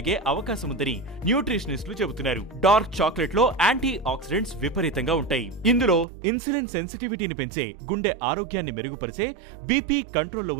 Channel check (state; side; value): drops out; left; at 6.1 s